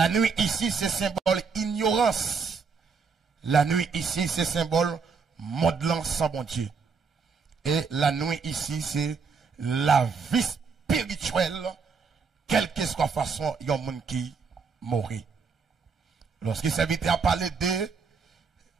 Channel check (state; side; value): quieter; left; 5.3 dB